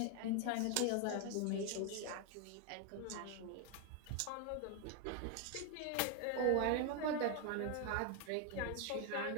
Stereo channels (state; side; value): different; both; correlation 0.01